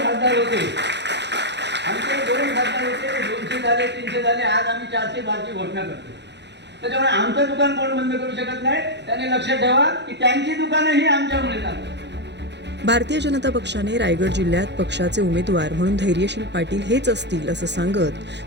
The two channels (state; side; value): late; left; 0.50 ms